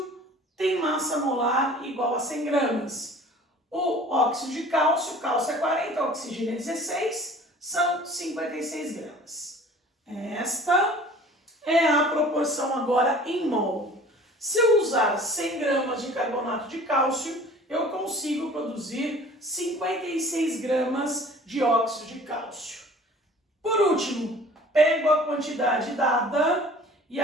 tem massa molar igual a 100 gramas. O óxido de cálcio, cálcio é 40, oxigênio é 16, são 56 gramas. Esta é a proporção agora em mol. Se eu usar 100 gramas de carbonato de cálcio, eu consigo produzir 56 gramas de óxido de cálcio. Por último, pego a quantidade dada, e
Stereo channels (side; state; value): both; normal; correlation 0.47